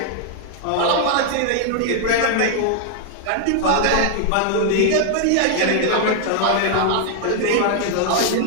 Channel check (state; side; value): different; both; correlation 0.00